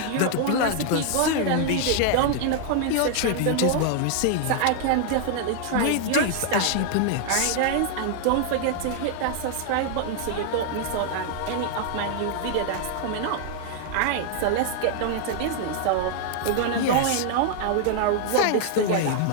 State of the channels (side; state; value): both; different; correlation 0.00